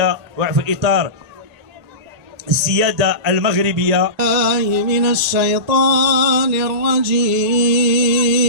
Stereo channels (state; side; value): late; left; 1.8 ms